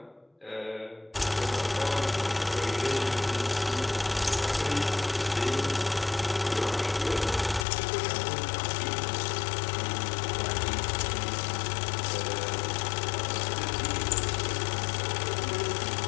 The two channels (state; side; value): drops out; right; at 7.7 s